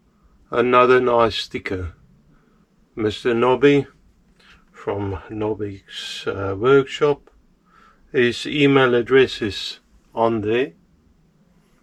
Another nice sticker. Mr. Nobby from Nobby's workshop. His email address is on there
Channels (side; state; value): both; identical; correlation 1.00